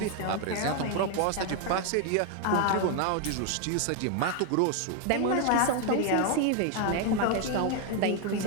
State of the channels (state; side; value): different; both; correlation 0.01